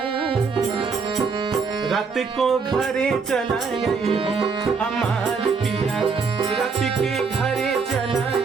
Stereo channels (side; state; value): left; quieter; 5.1 dB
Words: रात को घरे चलाए हो हमार पिया, रात के घरे